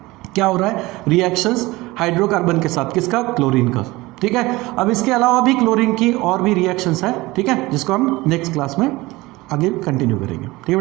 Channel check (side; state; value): left; quieter; 20.7 dB